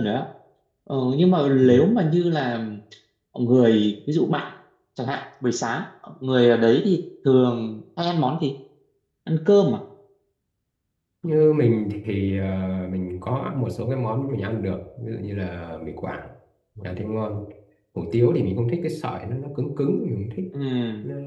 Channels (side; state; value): both; identical; correlation 1.00